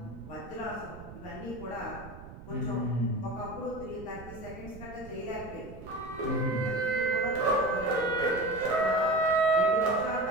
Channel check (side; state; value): right; noise; rumble, 15 dB below the sound